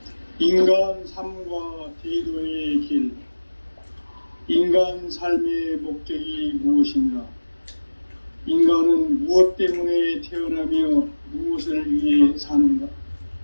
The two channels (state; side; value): inverted; both; correlation -1.00